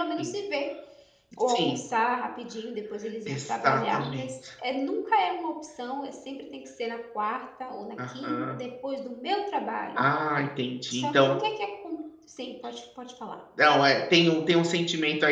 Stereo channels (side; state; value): both; identical; correlation 1.00